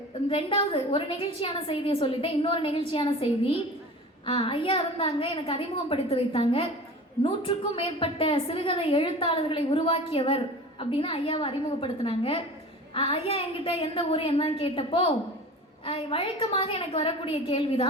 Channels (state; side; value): normal; both; correlation 0.37